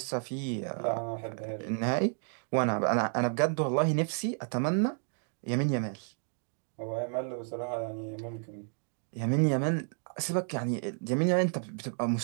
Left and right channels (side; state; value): left; silent; 57 dB below the other